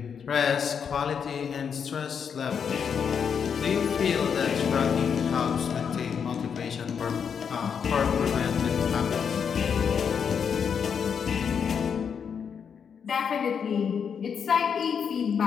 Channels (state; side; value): quieter; right; 7.0 dB